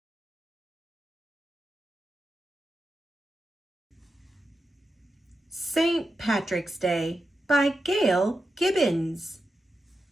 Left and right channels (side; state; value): both; normal; correlation 0.89